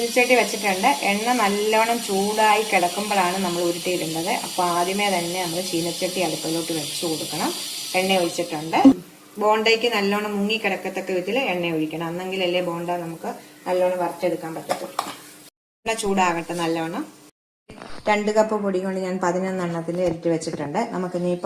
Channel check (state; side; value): identical; both; correlation 1.00